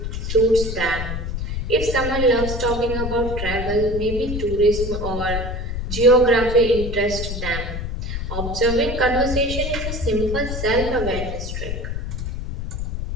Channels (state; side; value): noise; left; rumble, 4 dB below the sound